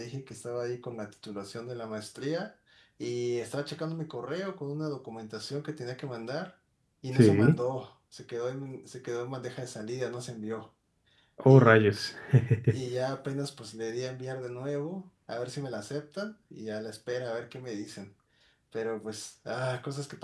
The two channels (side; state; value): both; identical; correlation 1.00